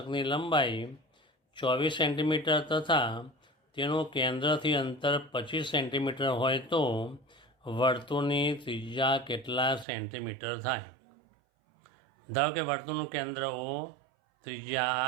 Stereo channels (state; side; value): drops out; left; at 9.9 s